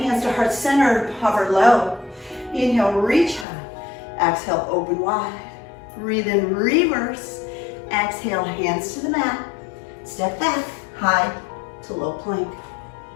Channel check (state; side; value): drops out; right; at 3.5 s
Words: to heart center, hover low. Inhale, reach high. Exhale, open wide. Breathe in, reverse. Exhale, hands to the mat. Step back, high to low plank.